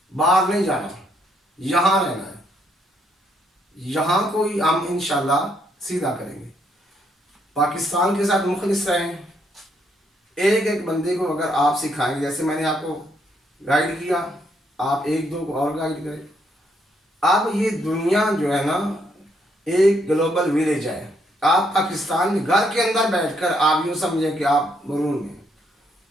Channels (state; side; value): normal; both; correlation 0.73